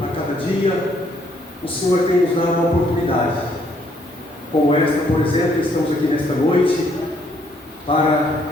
a cada dia, o Senhor tem nos dado uma oportunidade, como esta, por exemplo. Estamos aqui nesta noite para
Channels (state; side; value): normal; both; correlation 0.68